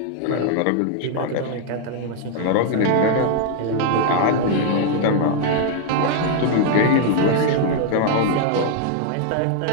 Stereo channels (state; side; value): different; both; correlation 0.00